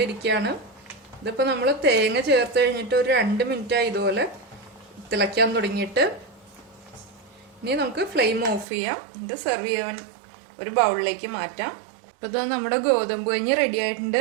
ഇതിപ്പോൾ നമ്മൾ തേങ്ങ ചേർത്ത് കഴിഞ്ഞിട്ട് ഒരു 2 മിനിറ്റായി ഇതുപോലെ തിളയ്ക്കാൻ തുടങ്ങിയിട്ട്. ഇനി നമുക്ക് ഫ്ലെയിം ഓഫ് ചെയ്യാം. ഇത് സെർവ് ചെയ്യാൻ ഒരു ബൗളിലേക്ക് മാറ്റാം. അപ്പോൾ ഇത് നമ്മുടെ ഗോതമ്പ് കഞ്ഞി റെഡി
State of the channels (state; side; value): drops out; left; at 8.7 s